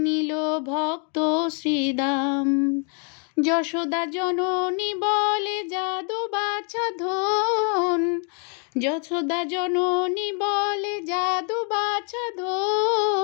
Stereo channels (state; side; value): quieter; right; 39.5 dB